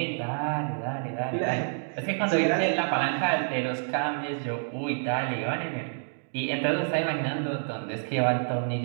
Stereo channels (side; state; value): left; silent; digital silence